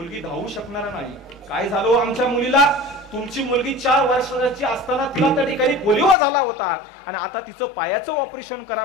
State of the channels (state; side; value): drops out; right; at 6.2 s